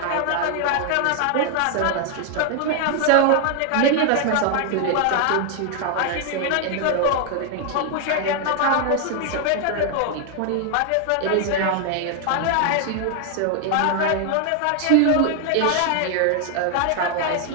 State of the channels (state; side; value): different; both; correlation 0.00